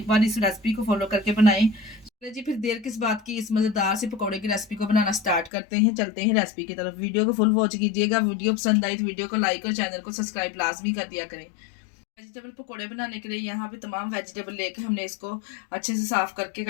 बार इस रेसिपी को फॉलो करके बनाएं। चलिए जी, फिर देर किस बात की, इस मज़ेदार से पकोड़े की रेसिपी को बनाना स्टार्ट करते हैं। चलते हैं रेसिपी की तरफ। वीडियो को फुल वॉच कीजिएगा। वीडियो पसंद आई तो वीडियो को लाइक और चैनल को सब्सक्राइब लाजमी कर दिया करें। वेजिटेबल पकोड़े बनाने के लिए यहाँ पे तमाम वेजिटेबल लेकर हमने इसको अच्छे से साफ करके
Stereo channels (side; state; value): right; drops out; at 5.5 s